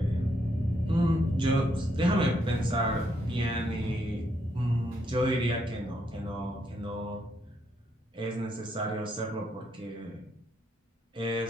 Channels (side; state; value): both; normal; correlation 0.76